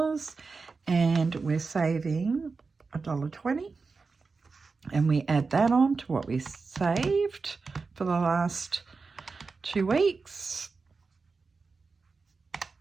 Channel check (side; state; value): left; quieter; 4.4 dB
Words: and we're saving $1.20. And we add that on to what we saved for the last 2 weeks.